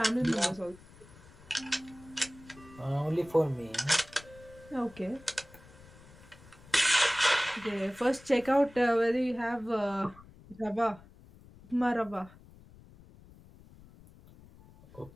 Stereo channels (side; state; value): left; noise; rumble, 22 dB below the sound